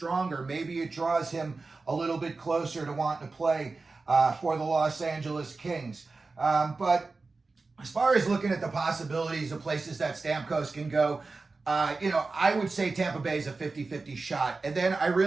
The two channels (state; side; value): quieter; left; 3.8 dB